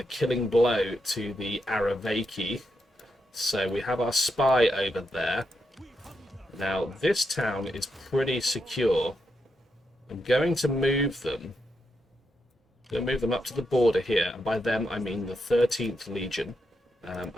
killing blow to the Aravaki. So we have our spy over there. Now, this town is pretty secure. I'm going to move them. Up to the border here, and by them I mean the 13th Legion.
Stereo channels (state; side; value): normal; both; correlation 0.83